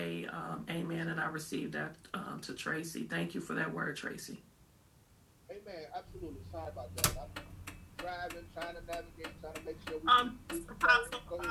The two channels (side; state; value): both; identical; correlation 1.00